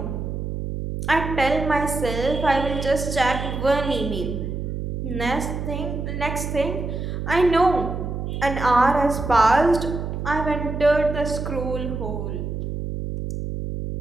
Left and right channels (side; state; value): right; noise; hum, 4 dB below the sound